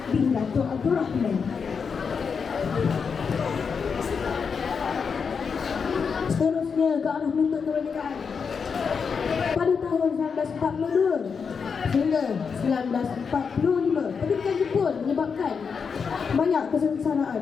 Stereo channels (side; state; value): right; quieter; 5.9 dB